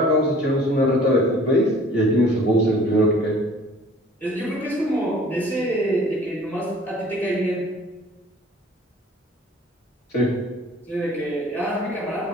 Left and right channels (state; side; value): normal; both; correlation 0.51